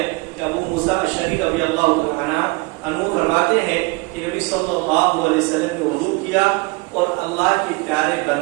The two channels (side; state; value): left; quieter; 25.6 dB